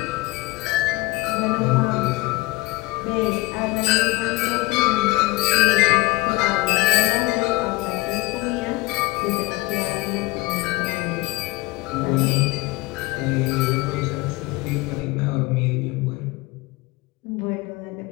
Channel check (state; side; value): quieter; right; 21.4 dB